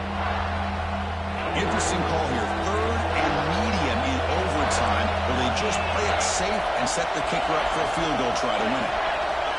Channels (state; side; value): identical; both; correlation 1.00